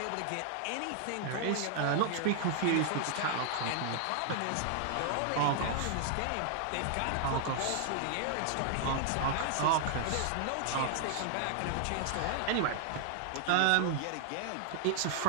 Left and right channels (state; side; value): different; both; correlation 0.00